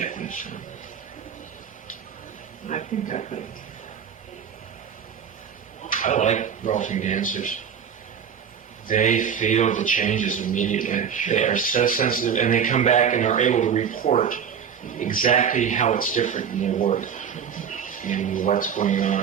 me some. I think I could. I like Rolfing dancers. They feel the changes immediately. They are so sensitive, and they come back and are able to report exactly how it's different in their work and what's going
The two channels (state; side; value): quieter; left; 7.7 dB